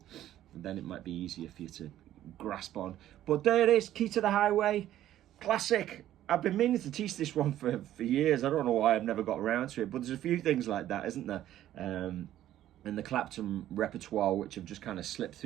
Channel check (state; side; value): quieter; left; 12.7 dB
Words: and then it might be easier for you to grasp on. But there it is, Key to the Highway, classic. I've been meaning to teach this one for years. I don't know why I've never got around to it, but there's a few things like that, isn't there? In the Clapton repertoire, which have just kind of slipped